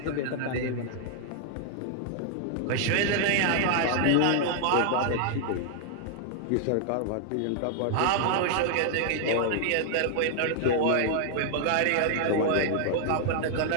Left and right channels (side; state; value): both; different; correlation 0.00